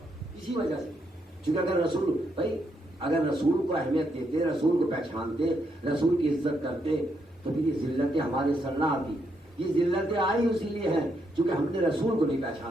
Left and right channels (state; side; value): normal; both; correlation 0.78